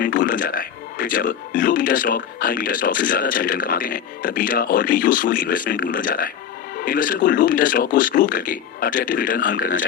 टूल बन जाता है। फिर जब low beta stock high beta stock से ज्यादा अच्छा रिटर्न कमाते हैं तब बीटा और भी यूजफुल इन्वेस्टमेंट टूल बन जाता है। इन्वेस्टर को लो बीटा स्टॉक को स्क्रूप करके अट्रैक्टिव रिटर्न अर्न करना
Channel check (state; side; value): quieter; right; 8.9 dB